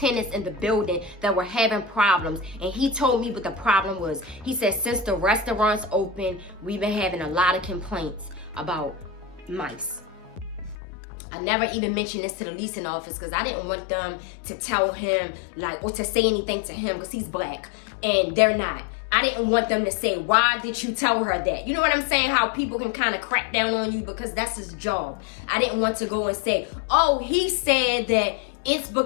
in the building that were having problems. And he told me what the problem was. He said, since the restaurant's open, we've been having a lot of complaints about mice. I never even mentioned this to the leasing office, because I didn't want them to tell him, like, or to say anything to him, because he's black and they're not. I didn't want them to say, why did you tell her that? You know what I'm saying? How people can kind of crack down on you because that's his job. I didn't want to go and say, oh, he said that it's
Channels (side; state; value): right; drops out; at 10.8 s